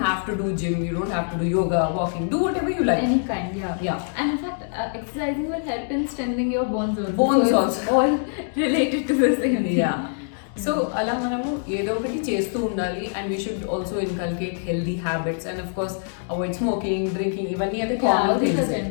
have to do gym, you don't have to do yoga, walking, do whatever you like. Any kind, yeah. Yeah. And in fact, exercising will help in strengthening your bones also. Bones So also. it's all related to the same thing. Yeah. So అలా మనము ఏదో ఒకటి చేస్తూ ఉండాలి, and we should also inculcate healthy habits, and of course avoid smoking, drinking, ఇవన్నీ అయితే Yeah, common these are things.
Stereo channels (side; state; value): right; silent; digital silence